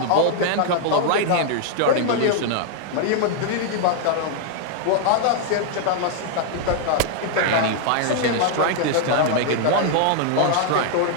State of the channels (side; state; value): both; different; correlation 0.00